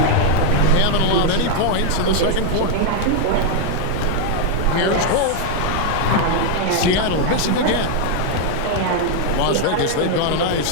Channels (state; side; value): different; both; correlation 0.00